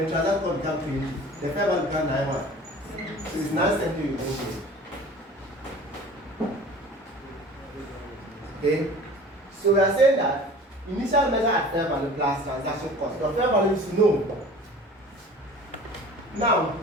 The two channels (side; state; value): both; normal; correlation 0.43